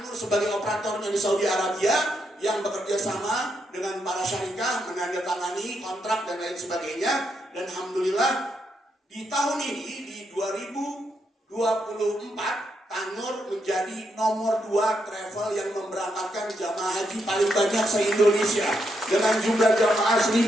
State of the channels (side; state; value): both; normal; correlation 0.80